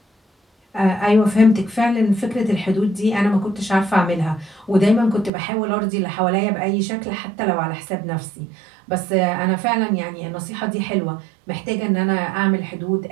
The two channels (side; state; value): left; drops out; at 5.3 s